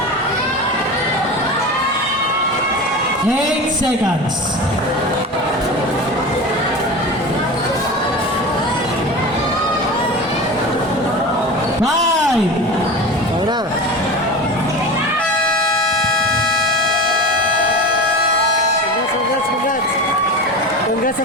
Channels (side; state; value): both; normal; correlation 0.29